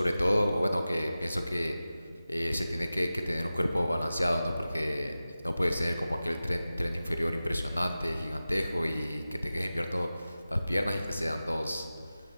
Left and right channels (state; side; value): inverted; both; correlation -0.95